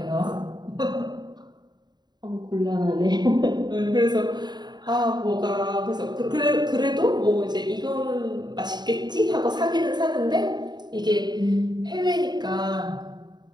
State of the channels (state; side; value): late; left; 0.21 ms